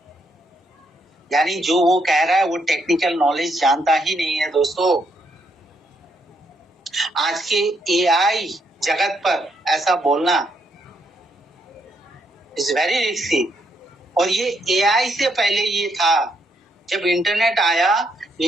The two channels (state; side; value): normal; both; correlation 0.75